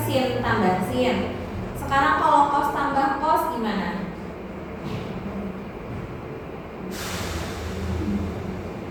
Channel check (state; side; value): identical; both; correlation 1.00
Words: sin tambah sin. Sekarang kalau cos tambah cos gimana?